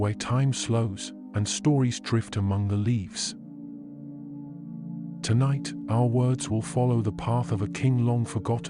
time slows and stories drift among the leaves. Tonight, our words will follow the path of a king long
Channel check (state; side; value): identical; both; correlation 1.00